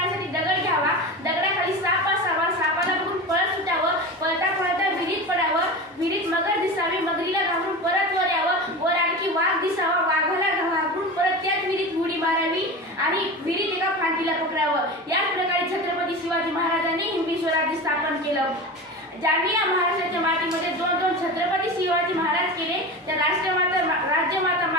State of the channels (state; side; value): normal; both; correlation 0.28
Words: दगड घ्यावा, दगडाखाली साप असावा, सापाला बघून पळत सुटावं, पळता पळता विहिरीत पडावं, विहिरीत मगर दिसावी, मगरीला घाबरून परत वर यावं, वर आणखी वाघ दिसावा, वाघाला घाबरून परत त्याच विहिरीत उडी मारावी आणि विहिरीत एका फांदीला पकडावं। याच प्रकारे छत्रपती शिवाजी महाराजांनी हिंदवी स्वराज्य स्थापन केलं। ज्यांनी या महाराष्ट्राच्या मातीमध्ये दोन छत्रपती शिवाजी महाराज केले त्या राष्ट्रमाता राज्यमाता